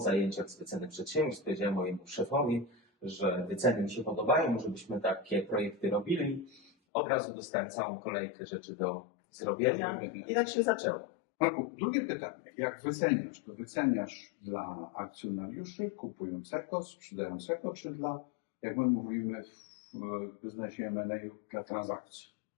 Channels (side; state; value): right; drops out; at 6.7 s